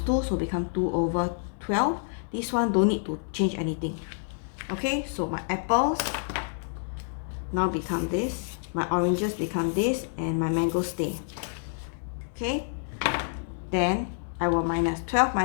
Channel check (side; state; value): right; silent; digital silence